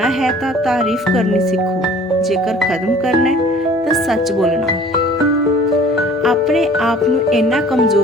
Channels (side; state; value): both; normal; correlation 0.50